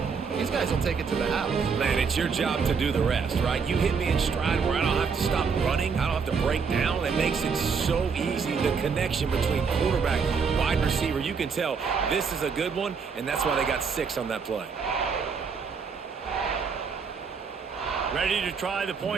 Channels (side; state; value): left; quieter; 5.7 dB